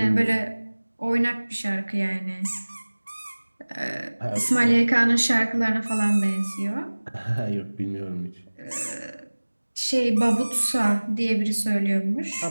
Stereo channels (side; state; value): both; inverted; correlation -1.00